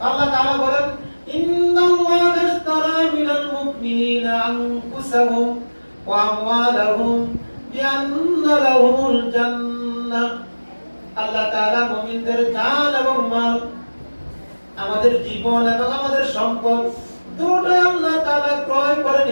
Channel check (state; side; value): inverted; both; correlation -1.00